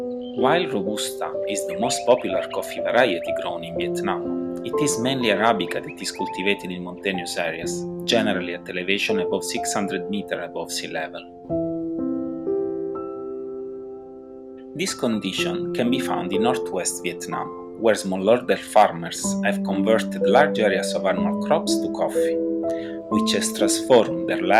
While Robusta is the most popular coffee variety grown in Vietnam, it is mainly Arabica that is cultivated in mountainous areas, generally at elevation above 600 meters above sea level. This condition can be found in northwest Vietnam, where smallholder farmers have converted large areas of annual crops to coffee, which has transformed their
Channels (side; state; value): both; identical; correlation 1.00